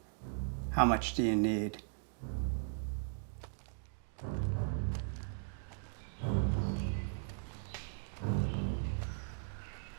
How much do you need?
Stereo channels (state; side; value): silent; left; digital silence